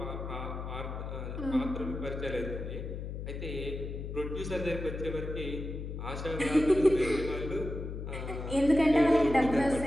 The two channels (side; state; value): left; noise; hum, 6 dB below the sound